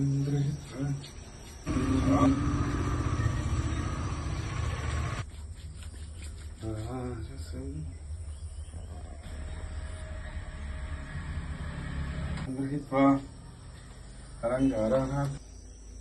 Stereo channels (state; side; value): identical; both; correlation 1.00